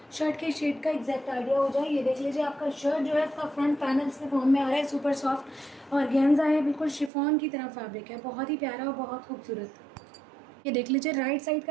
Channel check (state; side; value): drops out; left; at 7.1 s